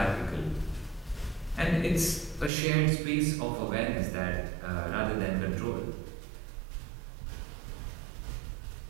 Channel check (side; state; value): left; drops out; at 2.5 s